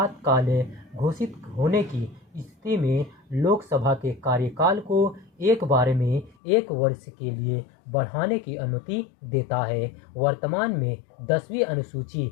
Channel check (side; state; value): right; drops out; at 6.4 s